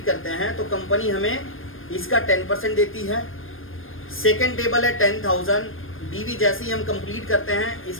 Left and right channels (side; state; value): right; late; 0.59 ms